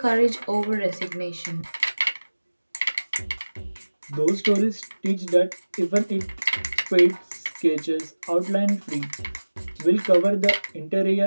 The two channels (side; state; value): both; inverted; correlation -1.00